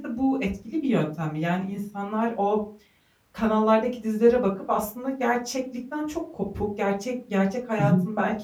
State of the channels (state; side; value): identical; both; correlation 1.00